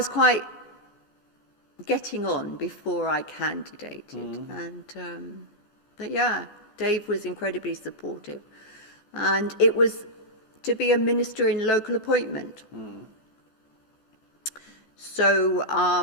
quite getting on before I candidated. And, but Dave was incredibly supportive. And it was to be a minister in local appointment. So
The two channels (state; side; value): late; right; 14 ms